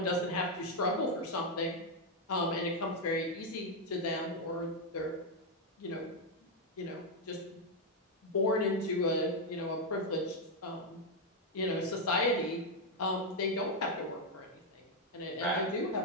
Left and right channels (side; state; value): both; normal; correlation 0.01